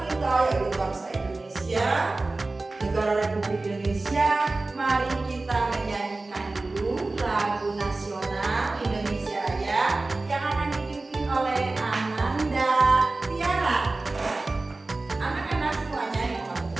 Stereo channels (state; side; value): quieter; left; 3.2 dB